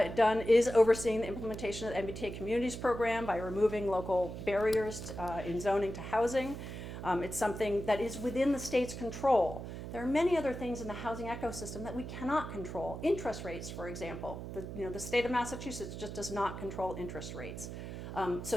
done is overseeing the implementation of the MBTA Communities Program by removing local barriers in zoning to housing. It's something that is within the state's control. There are many other things in the housing ecosystem that we cannot control. Interest rates, for example. The state of Massachusetts just does not control interest rates.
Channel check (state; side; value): noise; right; hum, 8 dB below the sound